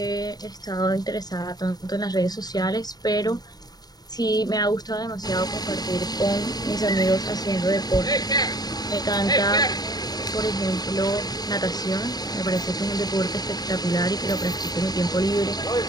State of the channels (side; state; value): right; late; 0.19 ms